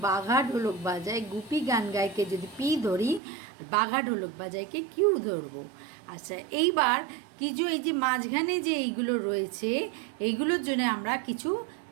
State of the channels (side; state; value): left; drops out; at 3.2 s